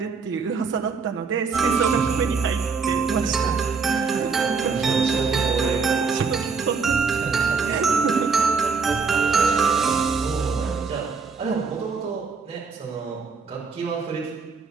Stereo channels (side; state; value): left; quieter; 5.0 dB